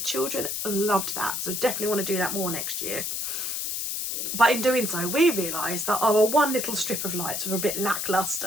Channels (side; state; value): left; noise; hiss, 2 dB below the sound